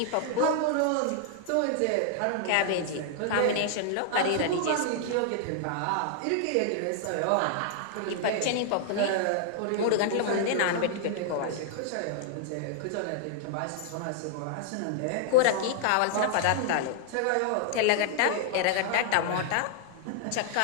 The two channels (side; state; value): both; different; correlation 0.00